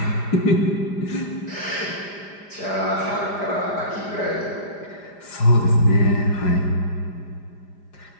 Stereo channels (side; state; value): right; late; 5.0 ms